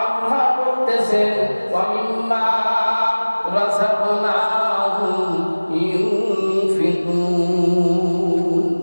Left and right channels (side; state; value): both; inverted; correlation -1.00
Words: আল্লাহ বলতেছেন, ওয়া মিম্মা রাযাকনাহুম ইউনফিকুন,